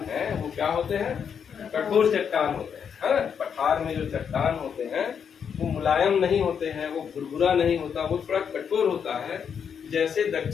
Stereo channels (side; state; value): right; quieter; 7.3 dB